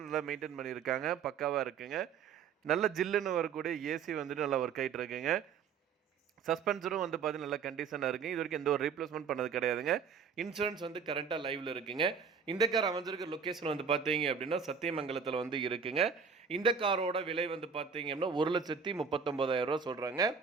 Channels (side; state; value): left; quieter; 6.3 dB